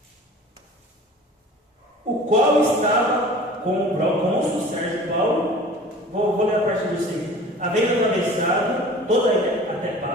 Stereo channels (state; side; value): normal; both; correlation 0.43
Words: o qual estava com o procônsul Sérgio Paulo, vou ler a partir do 6, havendo atravessado toda até